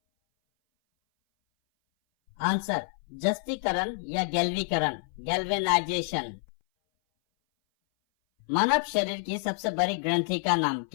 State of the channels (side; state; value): right; silent; 58 dB below the other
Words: आंसर जस्तीकरण या गैल्वीकरण, गैल्वेनाइजेशन। मानव शरीर की सबसे बड़ी ग्रंथि का नाम